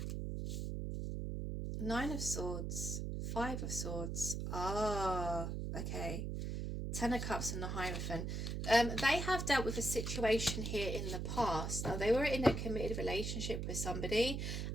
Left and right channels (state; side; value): noise; right; hum, 3 dB below the sound